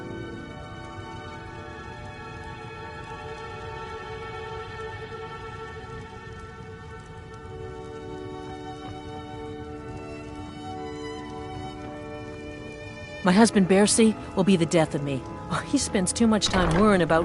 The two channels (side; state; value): both; identical; correlation 1.00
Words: My husband, Bercy, will be the death of me. Oh, he spends too much time worrying about